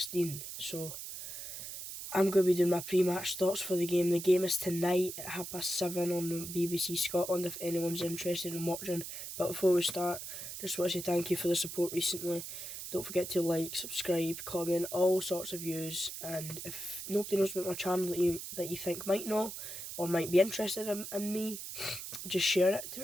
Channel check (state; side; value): noise; right; hiss, 8 dB below the sound